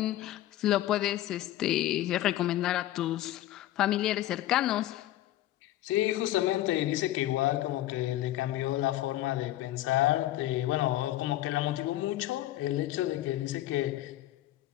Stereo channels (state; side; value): quieter; right; 14.4 dB